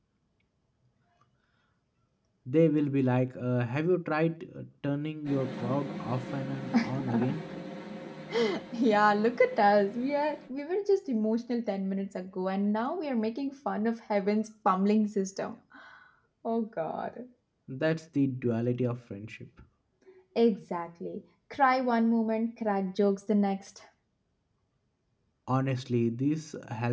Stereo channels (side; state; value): both; identical; correlation 1.00